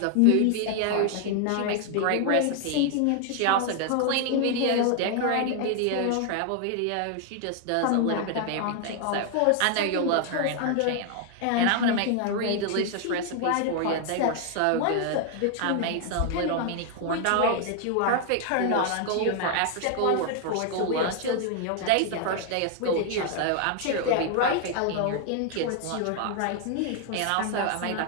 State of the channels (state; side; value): different; both; correlation 0.00